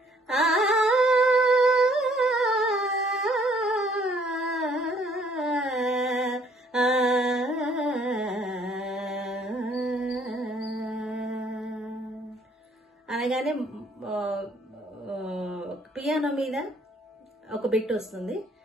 అనగానే పియానో మీద ఒక బిట్ వస్తుంది.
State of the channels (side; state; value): both; normal; correlation 0.63